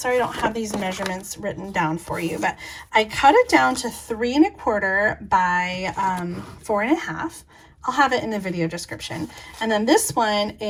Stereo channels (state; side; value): identical; both; correlation 1.00